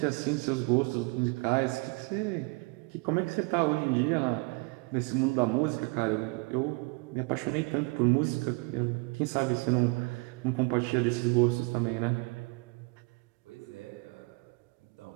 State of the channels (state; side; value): quieter; left; 29.3 dB